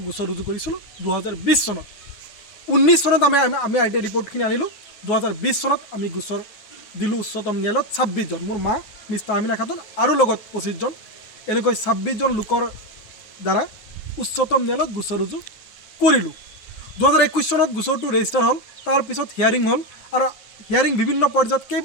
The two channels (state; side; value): late; right; 9.6 ms